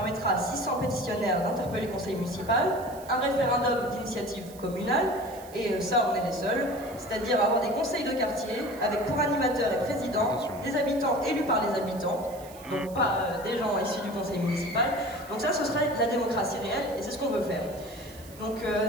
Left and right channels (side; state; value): right; noise; hiss, 20 dB below the sound